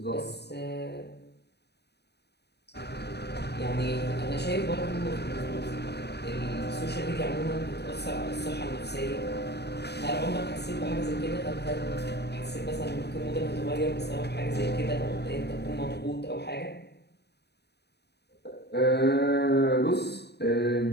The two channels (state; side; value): late; right; 0.48 ms